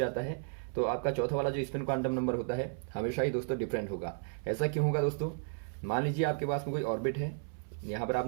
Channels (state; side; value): silent; left; 55 dB below the other